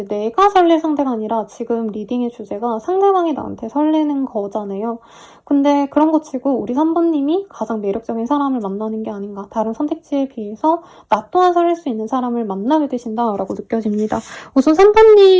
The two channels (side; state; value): both; identical; correlation 1.00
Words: 내가 설렐 상대가 아니라 지금 리딩의 주제가 상대방이 나한테 설레는 거잖아요. 근데 그런 거 치고 우리 3번님이 가장 매력적인 사람을 만나는 게 아닌가. 다른 선택지에 비해서 나 또한 설렐 수 있는 사람을 만나게 되신다라고 느껴집니다. 우선